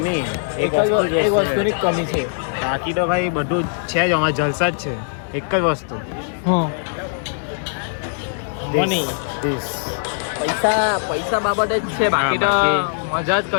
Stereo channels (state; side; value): silent; right; digital silence